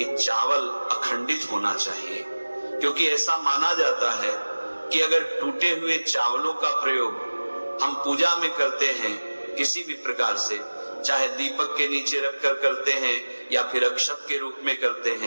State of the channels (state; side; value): inverted; both; correlation -1.00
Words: चावल अखंडित होना चाहिए, क्योंकि ऐसा माना जाता है कि अगर टूटे हुए चावलों का प्रयोग हम पूजा में करते हैं किसी भी प्रकार से, चाहे दीपक के नीचे रखकर करते हैं या फिर अक्षत के रूप में करते